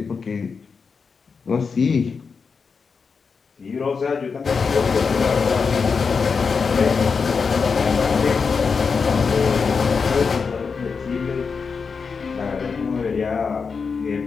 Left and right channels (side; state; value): right; quieter; 5.3 dB